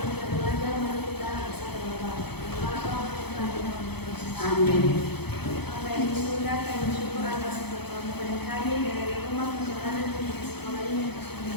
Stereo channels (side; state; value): right; late; 0.97 ms